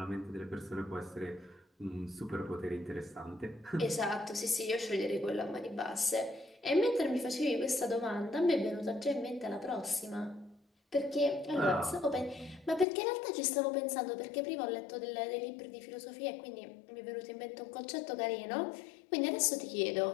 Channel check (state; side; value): drops out; right; at 12.9 s